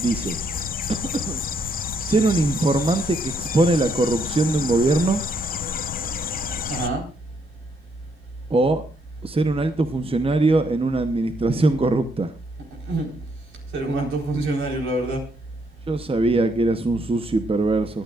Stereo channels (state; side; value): normal; both; correlation 0.74